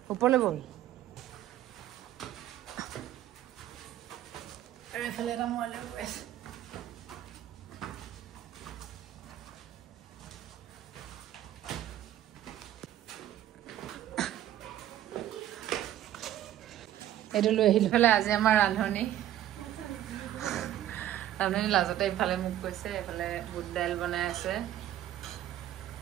ওপৰলৈ ব'ল আৰু এইফালে এটা মই লৈ গৈ আছোঁ এইটো লৈ আহিলোঁ ইফালে আজি আমাৰ ৰান্ধনি লাজতে ইফালে মোক কৈছে এইফালে বুট দাইল বনাই আছে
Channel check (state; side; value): quieter; left; 12.5 dB